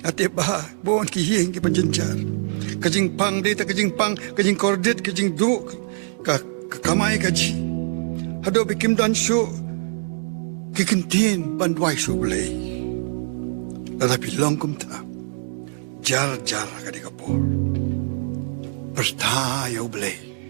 Ate bah, buon kihing ke panjenjar. Kajing pang data, kajing pang, kajing kordet, kajing du, kamay kaji. Hado bikim dan syu, kikintin bandwai sublay. Tetapi longkum ta, jar kadi kapur. Pertayo blay.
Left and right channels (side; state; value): left; silent; 63 dB below the other